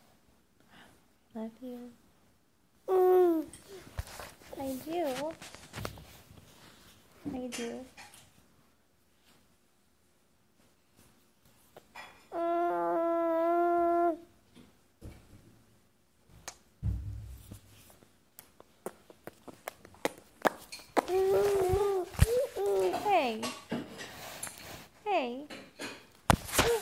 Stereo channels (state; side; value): identical; both; correlation 1.00